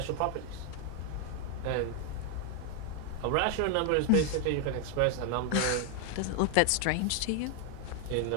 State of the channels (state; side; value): different; both; correlation 0.01